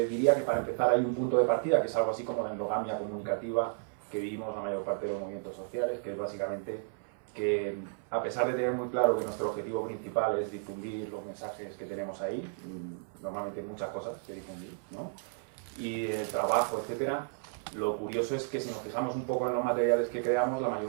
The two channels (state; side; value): silent; left; 56 dB below the other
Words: diría que para empezar hay un punto de partida, que es algo así como la endogamia comunicativa que vivimos la mayor parte de los movimientos sociales, que es básicamente que, a pesar de tener muy claro que nuestro objetivo principal es difundir los mensajes que tenemos ahí, normalmente hay muchas cosas que difundir, ¿no? Y el trabajo, etcétera, lo curioso es que si nos fijamos un poco en los materiales que creamos, la